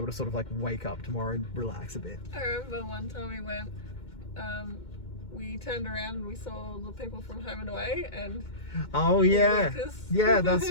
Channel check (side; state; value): right; late; 2.2 ms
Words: to sort of like wake up tomorrow and relax a bit. I remember one time we went, we turned around and we saw the people from Home and Away, and oh yeah, yeah, that's